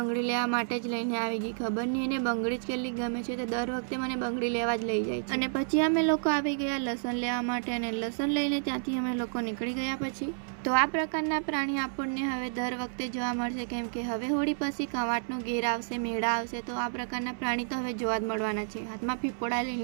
લેવા માટે જ લઈને આવી ગઈ. ખબર નહીં એને બંગડી જ કેટલી ગમે છે, તો દર વખતે મને બંગડી લેવા જ લઈ જાય છે. અને પછી અમે લોકો આવી ગયા લસણ લેવા માટે, અને લસણ લઈને ત્યાંથી અમે લોકો નીકળી ગયા. પછી તો આ પ્રકારના પ્રાણી આપણને હવે દર વખતે જોવા મળશે, કેમ કે હવે હોળી પછી કવાંટનો ઘેર આવશે, મેળા આવશે, તો આ પ્રકારના પ્રાણી તો હવે જોવા જ મળવાના છે, હાથમાં પીપોડા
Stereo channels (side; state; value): left; silent; 58 dB below the other